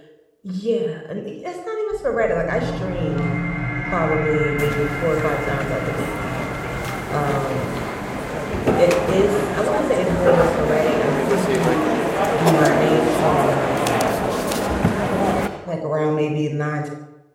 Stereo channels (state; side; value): identical; both; correlation 1.00